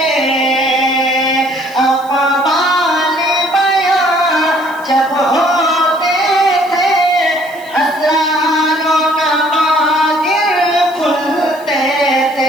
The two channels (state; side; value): noise; right; hiss, 24 dB below the sound